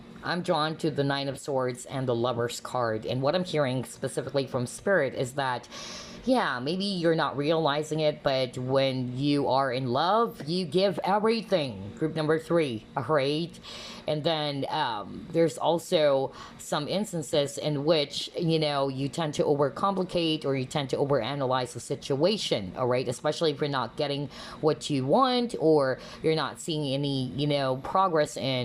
I'm drawn to the 9 of Swords and the Lovers card. And what I'm hearing specifically from Spirit is that, yeah, maybe you're not realizing it, but when you are in love, you give everything. Group number 3, all right? And then there's also some instances in which, you tend to overcomplicate or you tend to overanalyze the situation, all right? Especially if you're not getting what you want or you're not seeing any, progress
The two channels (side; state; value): both; identical; correlation 1.00